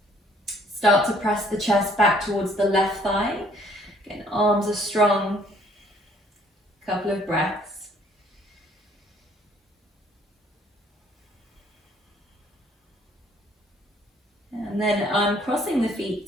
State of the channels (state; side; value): normal; both; correlation 0.61